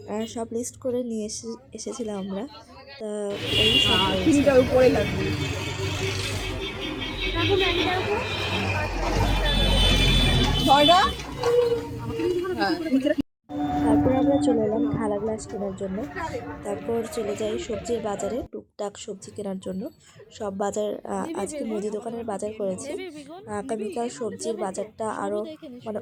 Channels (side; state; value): both; identical; correlation 1.00